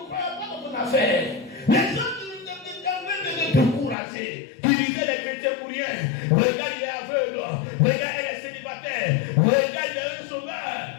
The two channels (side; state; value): right; drops out; at 4.0 s